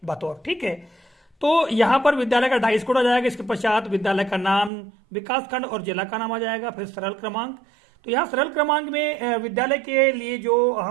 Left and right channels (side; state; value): left; drops out; at 4.7 s